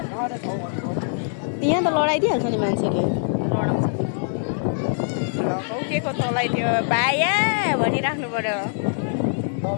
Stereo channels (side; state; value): right; silent; digital silence